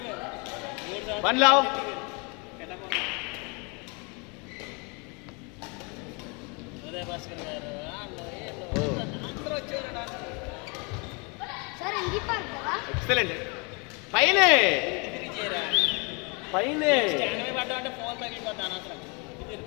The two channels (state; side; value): quieter; right; 31.5 dB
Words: మేము 3 సంవత్సరాలు వన్ లావ్ ఉదయ భాస్కర్ గారు అందరూ వచ్చేవారు. ఎక్సలెంట్ పైనే పైనే పడ్డామంటే ఫోన్ తగిలిపోతా అనవసరం.